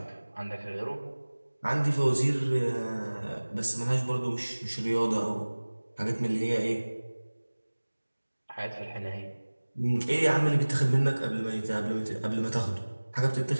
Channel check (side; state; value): both; inverted; correlation -1.00